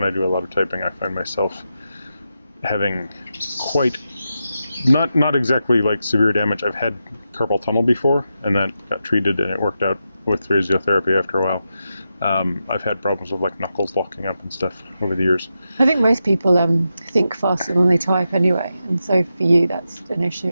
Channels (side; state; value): both; inverted; correlation -0.88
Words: I do a lot of typing, I find myself having quite Not exactly like severe damage. I've had carpal tunnel before, and that got treated, and it worked out with physiotherapy after a while. I've had problems with like knuckles locking up and stuff over the years. I think most people think faster than they type anyway, and so for you that's an issue.